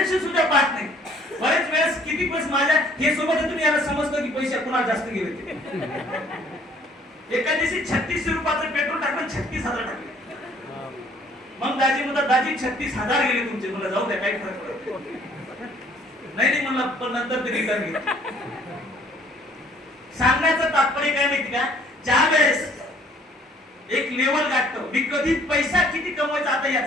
सुद्धा पाहत नाही. बरेच वेळेस किती पैसे माझ्या हे सोबत तुम्ही याला समजतो की पैसे कुणाला जास्त गेले ते. एका दिवशी 36 रुपयाचं पेट्रोल टाकलं, 36,000 टाकले. मग दाजी म्हणतात दाजी 36,000 गेले तुमचे. मला जाऊ द्या, काही फरक पडत नाही म्हणलं, पण नंतर ते रिटर्न घेतलं. सांगण्याचं तात्पर्य काय माहिती का, ज्या वेळेस एक लेवल गाठतो, मी कधी पैसा किती कमवायचा आता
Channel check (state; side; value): normal; both; correlation 0.59